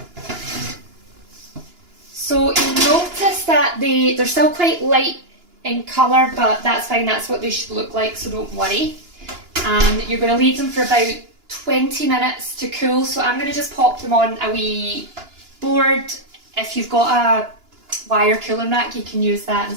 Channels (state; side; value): late; left; 2.9 ms